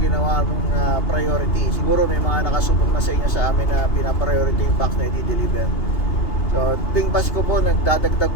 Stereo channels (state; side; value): late; right; 2.8 ms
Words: ginawa mong priority. Siguro may mga nakasubok na sa inyo sa amin na pinapriority yung box na i-deliver. So tuwing Pasko po, nagdadagdag